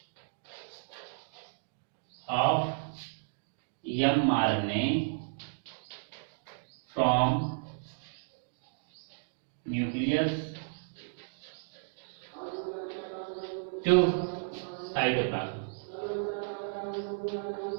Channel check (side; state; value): left; silent; digital silence